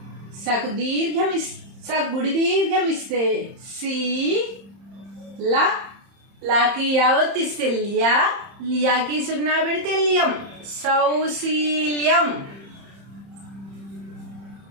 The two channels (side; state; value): left; late; 30 ms